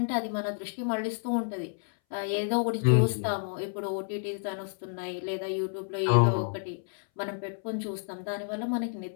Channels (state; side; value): silent; right; 58 dB below the other